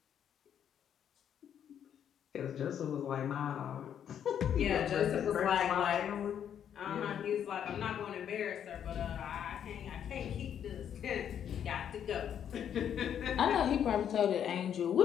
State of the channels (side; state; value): right; quieter; 9.1 dB